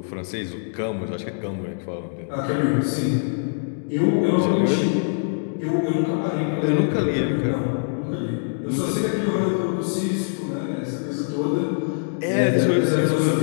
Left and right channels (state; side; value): silent; right; digital silence